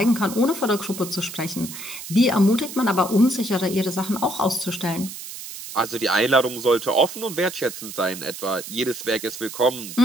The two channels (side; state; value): right; noise; hiss, 11 dB below the sound